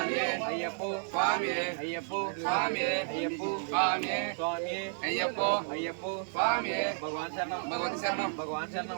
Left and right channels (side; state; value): left; silent; digital silence